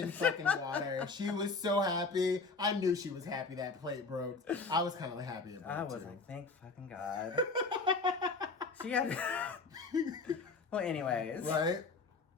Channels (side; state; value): right; quieter; 4.1 dB